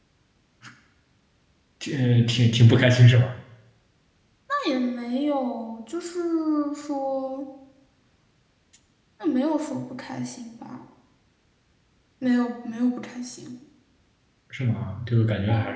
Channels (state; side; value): identical; both; correlation 1.00